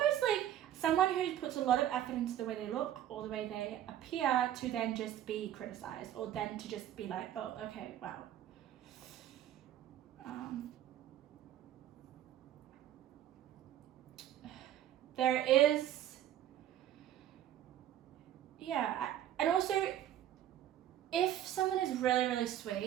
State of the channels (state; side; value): quieter; left; 11.6 dB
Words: like someone who puts a lot of effort into the way they look or the way they appear to then just be criticized, or then to just be like, oh, okay, wow. There is, and also, if someone is really, really